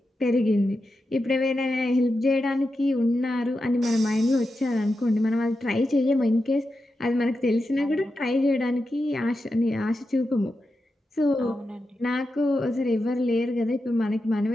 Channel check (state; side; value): normal; both; correlation 0.89